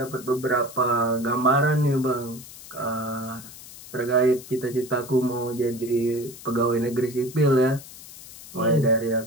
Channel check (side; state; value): left; noise; hiss, 16 dB below the sound